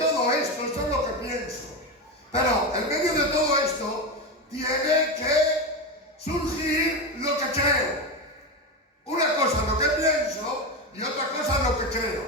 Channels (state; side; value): normal; both; correlation 0.16